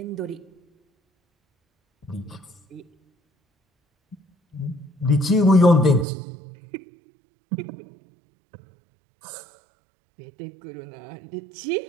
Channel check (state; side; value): drops out; left; at 6.1 s